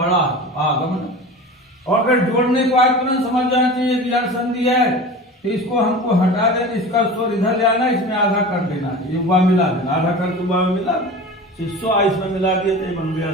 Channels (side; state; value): both; normal; correlation 0.34